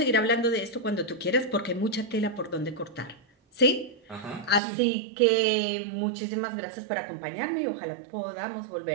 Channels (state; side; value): drops out; left; at 4.6 s